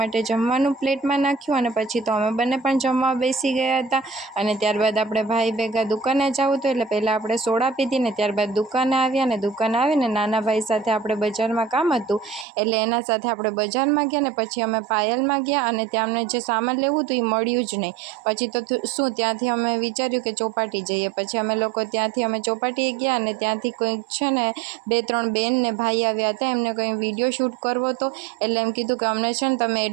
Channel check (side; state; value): left; drops out; at 12.5 s